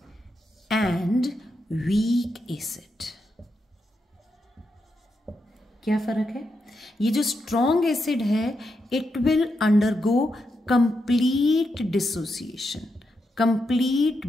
and weak acid. क्या फर्क है? ये जो स्ट्रॉन्ग एसिड है, it will undergo complete dissociation, complete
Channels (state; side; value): normal; both; correlation 0.84